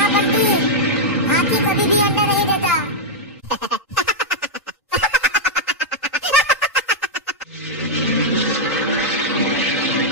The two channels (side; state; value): both; normal; correlation -0.05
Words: बंटी, हाथी कभी भी अंडा नहीं देता।